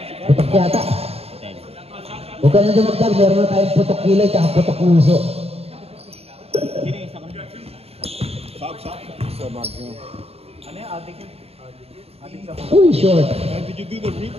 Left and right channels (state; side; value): late; left; 0.29 ms